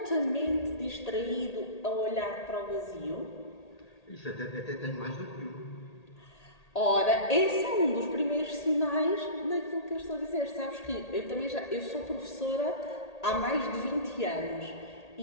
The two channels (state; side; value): late; right; 1.8 ms